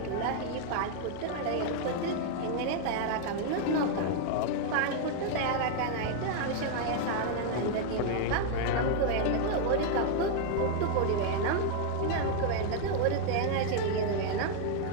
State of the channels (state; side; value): different; both; correlation 0.00